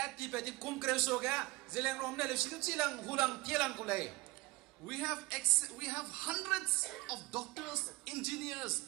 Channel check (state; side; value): quieter; left; 22.1 dB